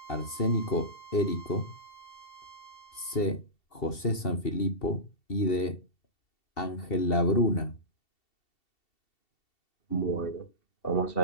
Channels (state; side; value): late; right; 2.7 ms